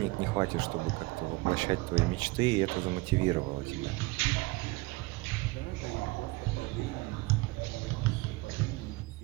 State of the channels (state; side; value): quieter; left; 22.9 dB